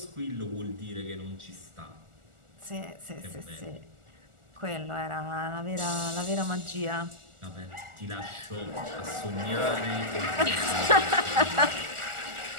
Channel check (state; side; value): late; left; 1.4 ms